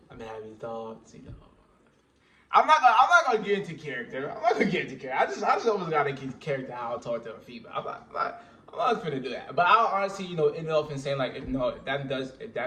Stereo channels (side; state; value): both; identical; correlation 1.00